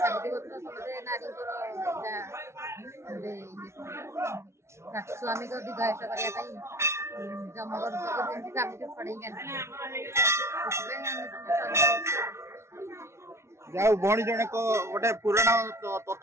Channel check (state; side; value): late; left; 0.13 ms